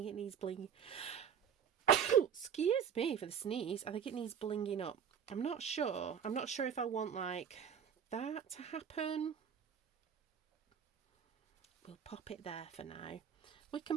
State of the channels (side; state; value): left; quieter; 8.0 dB